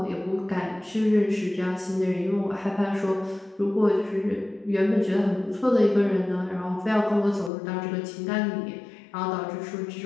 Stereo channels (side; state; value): right; drops out; at 7.5 s